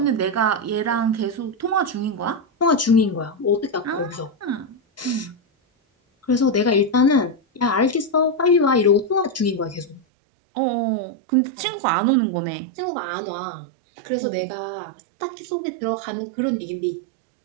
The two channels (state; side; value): drops out; left; at 10.0 s